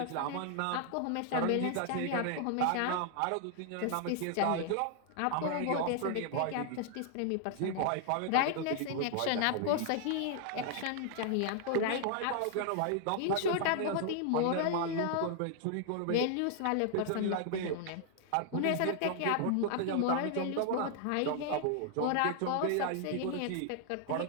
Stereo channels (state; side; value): different; both; correlation 0.00